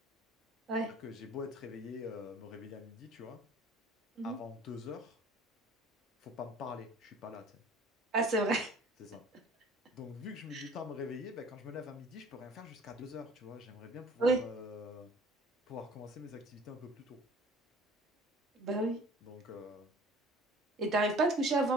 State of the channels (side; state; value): both; normal; correlation 0.49